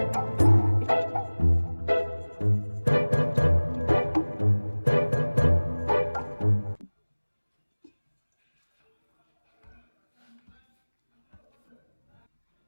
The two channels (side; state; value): both; inverted; correlation -1.00